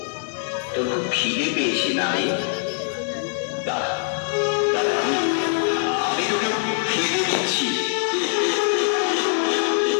তোর খুব খিদে পেয়েছে না রে? দাদা, দাদা, আমি তোকে খেতে দিচ্ছি।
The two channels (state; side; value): silent; right; 60 dB below the other